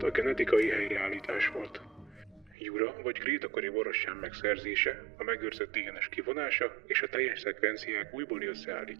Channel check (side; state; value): left; drops out; at 2.6 s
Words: a genetikai helyreállítás volt. Jura vagy krétakori borostyán megszerzése, a megőrzött DNS kivonása és a teljes szekvenciák újbóli